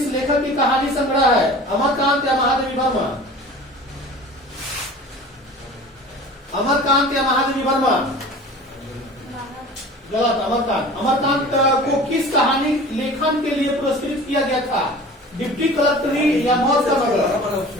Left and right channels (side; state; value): both; normal; correlation 0.41